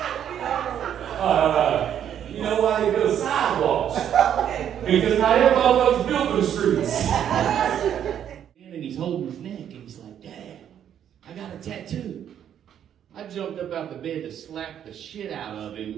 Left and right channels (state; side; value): quieter; left; 9.6 dB